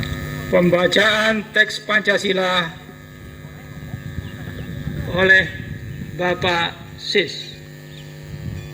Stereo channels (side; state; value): both; identical; correlation 1.00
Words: Pembacaan teks Pancasila oleh Bapak Sis.